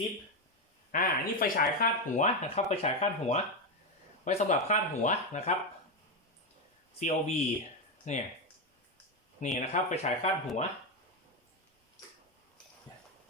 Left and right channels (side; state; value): both; normal; correlation 0.09